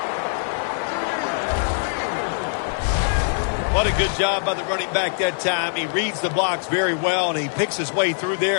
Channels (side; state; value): right; silent; digital silence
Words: What a good job by the running back that time. He reads the blocks very well, and he picks his way through there